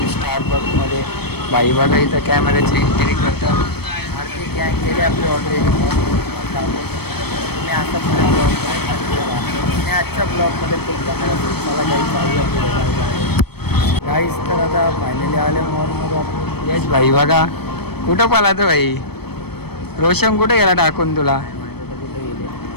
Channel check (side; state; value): right; late; 0.97 ms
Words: स्टारबक्समध्ये. बाई बघा इथं कॅमेऱ्याची एंट्री करतात. आरती गँग केली आपली ऑलरेडी. मी आता पुढे मी आजच्या ब्लॉगमध्ये खूप कॅमेरा मला गाईज चालू गाईज. तर आता फायनली आले मॉलमध्ये आपण. यश भाई बघा कुठं पालातं भाई. रोशन कुठे गेला टाकून तुला. कुठे गेले